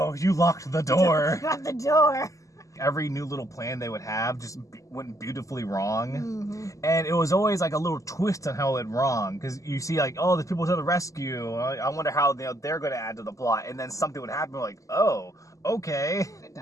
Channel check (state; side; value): late; right; 0.16 ms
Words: you locked the door. Not the door. Every new little plan they would have just went beautifully wrong. And it was always like a little twist on how it went wrong. Because you see like, oh, there's people to the rescue. I wonder how they're going to add to the plot. And then something would happen like, oh, okay.